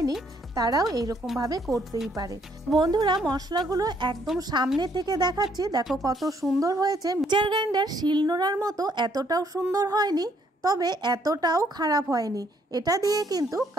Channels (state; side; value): normal; both; correlation 0.68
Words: তারাও এইরকমভাবে করতেই পারে। বন্ধুরা, মশলাগুলো একদম সামনে থেকে দেখাচ্ছি, দেখো কত সুন্দর হয়েছে। মিক্সচার গ্রাইন্ডার শিলনোড়ার মতো এতটাও সুন্দর হয়নি, তবে এতটাও খারাপ হয়নি। এটা দিয়ে কিন্তু